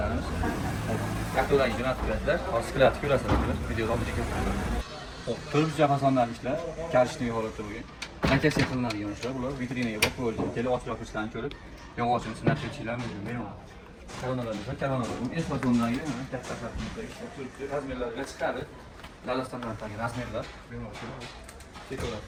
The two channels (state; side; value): identical; both; correlation 1.00